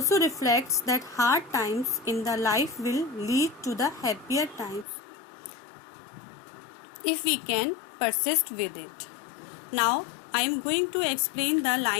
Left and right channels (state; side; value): drops out; right; at 4.9 s